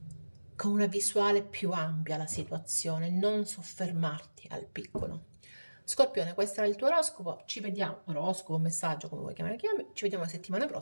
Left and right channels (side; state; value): both; inverted; correlation -1.00